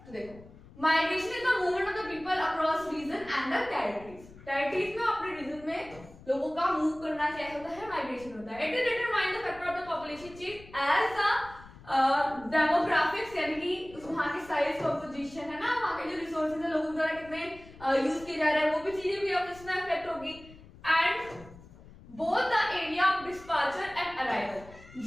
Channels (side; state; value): left; noise; rumble, 20 dB below the sound